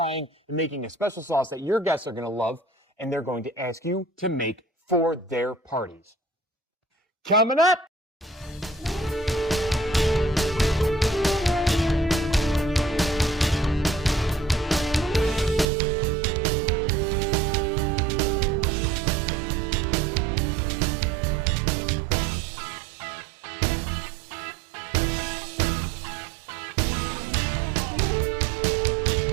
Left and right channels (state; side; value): drops out; left; at 15.7 s